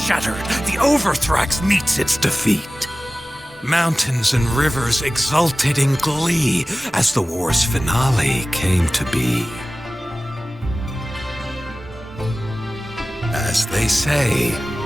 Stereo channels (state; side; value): normal; both; correlation 0.97